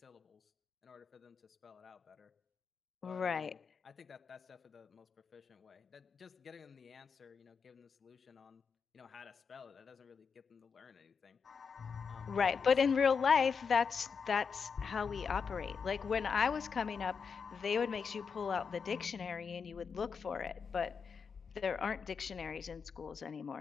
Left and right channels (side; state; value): right; quieter; 5.9 dB